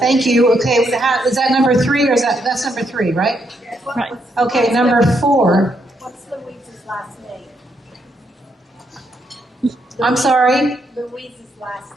you. Okay, is that number 3 or that's number 3, right? Right. Okay, number 4. What's Louise's last name? I'm sorry? Louise's last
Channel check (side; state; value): both; normal; correlation 0.77